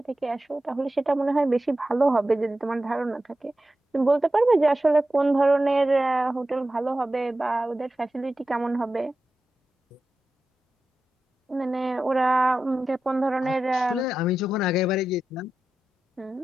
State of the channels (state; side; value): normal; both; correlation 0.92